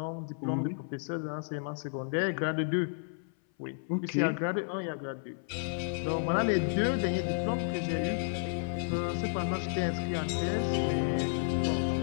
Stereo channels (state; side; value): silent; right; 56 dB below the other